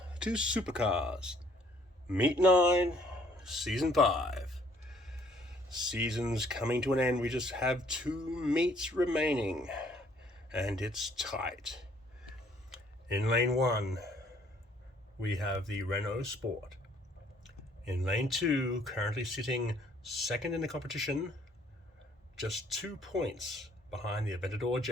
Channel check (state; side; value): normal; both; correlation 0.62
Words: to Supercars, Meet 9, Season 5. Season's coming to an end. We just have 2 meets remaining, and it's tight. In Lane 1, we have the Renault Sport. In Lane 2, currently sitting second in the competition, just 2 points behind the Aventador